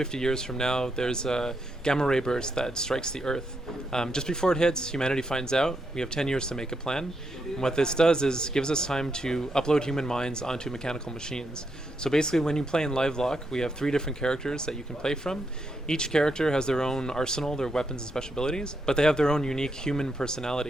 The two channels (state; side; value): normal; both; correlation 0.81